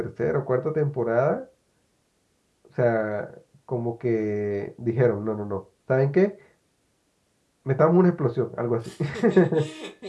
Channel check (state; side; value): identical; both; correlation 1.00